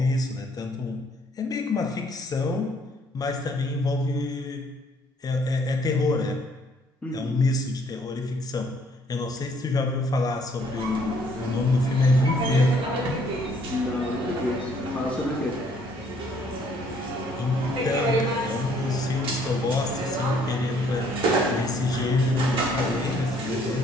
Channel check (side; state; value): both; normal; correlation 0.63